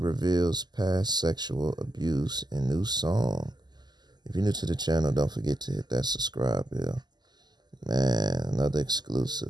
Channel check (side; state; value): left; late; 0.21 ms